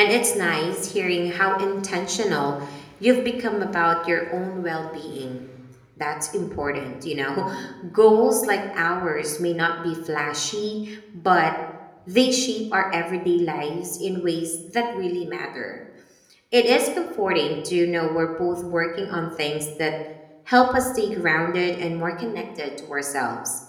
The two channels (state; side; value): identical; both; correlation 1.00